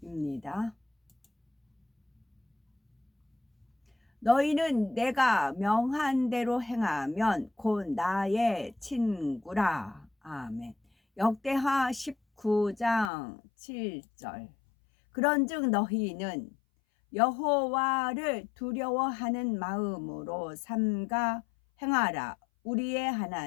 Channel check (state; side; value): drops out; right; at 13.1 s